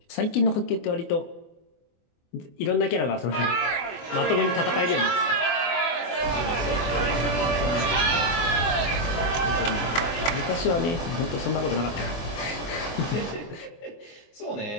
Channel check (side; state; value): right; late; 24 ms